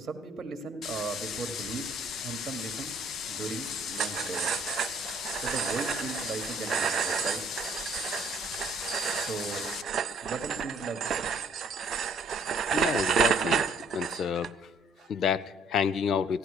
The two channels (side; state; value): both; normal; correlation 0.61